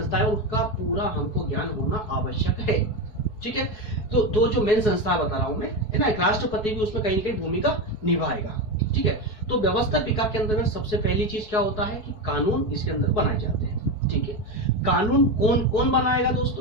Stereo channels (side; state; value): right; late; 4.6 ms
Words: उसका पूरा हमको ज्ञान होना आवश्यक है। ठीक है, तो दो जो मेन संस्था बता रहा हूं मैं, है ना, एक राष्ट्रपति भी उसमें कहीं ना कहीं भूमिका निभाएगा। ठीक है, तो व्यवस्थापिका के अंदर सबसे पहली चीज क्या होता है कि कानून इसके अंदर बनाए जाते हैं। ठीक है, कानून कौन कौन बनाएगा